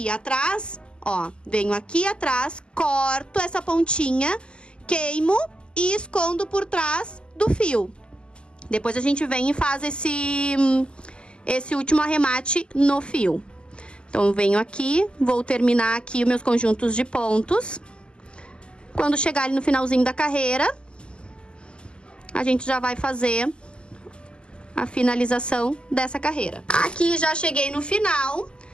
atrás, ó, venho aqui atrás, corto essa pontinha, queimo e escondo por trás do fio. Depois a gente vem e faz esse último arremate no fio. Então, eu venho aqui, vou terminar aqui os meus conjuntos de pontos. Quando chegar ali no finalzinho da carreira, a gente já vai fazer a finalização dessa carreira. Aqui já cheguei no final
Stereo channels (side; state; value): right; late; 0.050 ms